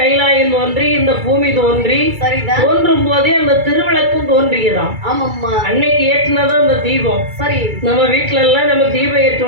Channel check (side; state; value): left; late; 2.3 ms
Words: தோன்றி, இந்த பூமி தோன்றி, சரிதான், தோன்றும் போதே அந்த திருவிளக்கும் தோன்றியதாம். ஆமாம்மா. அன்னைக்கு ஏற்றினதான் அந்த தீபம். சரி, நம்ம வீட்டுல எல்லாம் நம்ம தீபம்